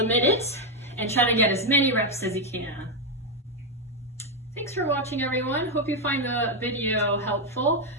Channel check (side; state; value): both; normal; correlation 0.04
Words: minute and try to get as many reps as you can. Thanks for watching, everyone. Hope you find the video helpful.